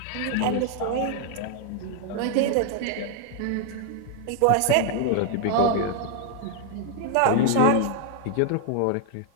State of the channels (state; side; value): different; both; correlation 0.00